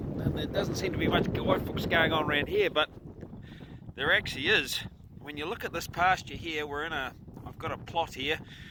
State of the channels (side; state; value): both; identical; correlation 1.00